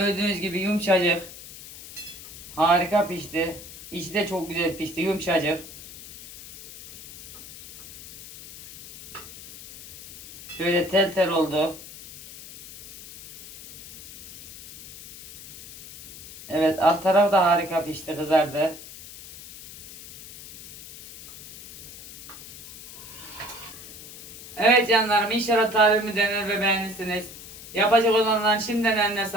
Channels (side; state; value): left; noise; hiss, 15 dB below the sound